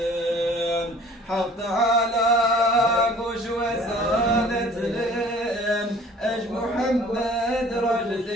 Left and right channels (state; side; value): normal; both; correlation 0.50